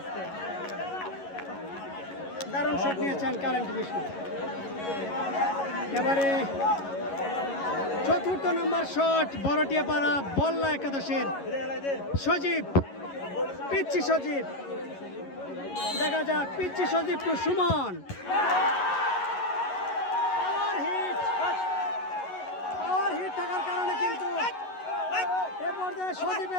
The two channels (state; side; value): late; right; 11 ms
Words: দারুণ শট নিয়েছেন কারেন্ট মিশু। এবারে 4র্থ নম্বর শট বড়টিয়াপাড়া বল্লা একাদশের সজীব। পিচ্ছি সজীব। দেখা যাক পিচ্ছি সজীব টু সুমন। পাওয়ার হিট থাকার কারণে কিন্তু এ পর্যায়ে